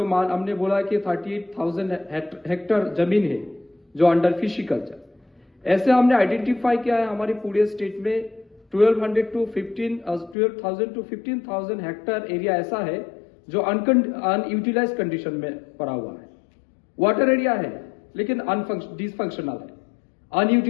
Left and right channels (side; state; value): right; drops out; at 10.4 s